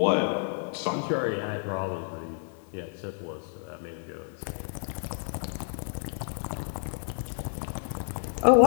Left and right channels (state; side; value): silent; right; 56 dB below the other